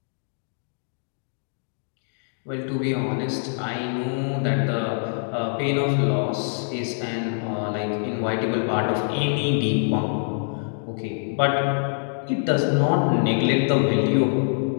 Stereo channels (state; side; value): silent; right; digital silence